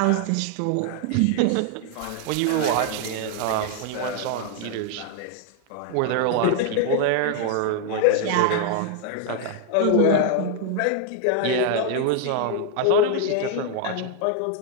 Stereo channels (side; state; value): both; different; correlation 0.00